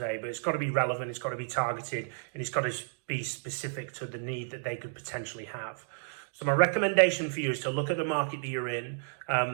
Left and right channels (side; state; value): left; silent; digital silence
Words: but it's got to be relevant, it's got to be targeted, and it's got to be specific to the need that they could potentially have. So my recommendation for you is to look at the market that you're in.